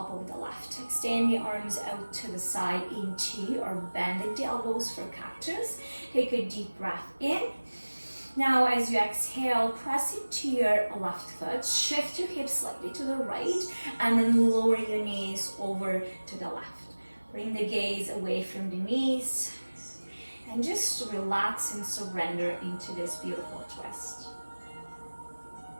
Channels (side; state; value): both; inverted; correlation -1.00